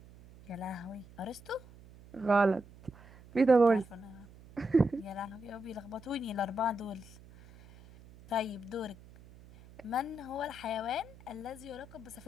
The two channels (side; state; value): right; noise; hum, 21 dB below the sound